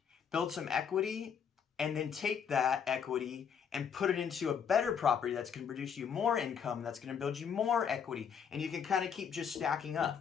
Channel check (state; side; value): quieter; right; 7.4 dB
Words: build some equity, and then take that equity and put it into a better property that's going to produce you more income, that's going to build you more equity, and you can kind of keep just stacking